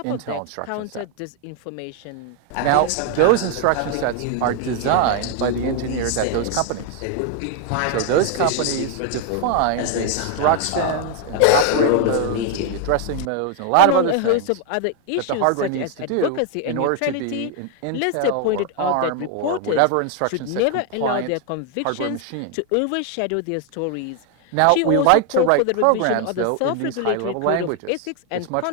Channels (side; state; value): both; different; correlation 0.00